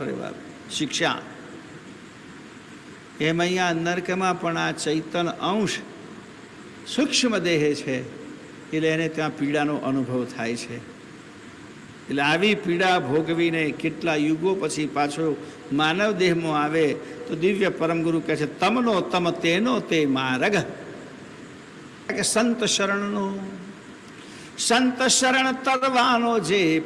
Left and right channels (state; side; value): identical; both; correlation 1.00